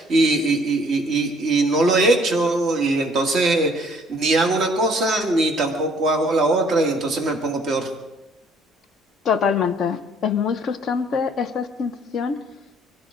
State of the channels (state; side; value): normal; both; correlation 0.60